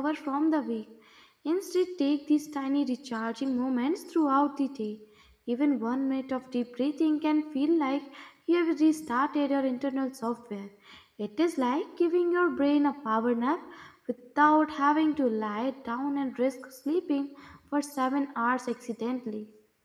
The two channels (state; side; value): identical; both; correlation 1.00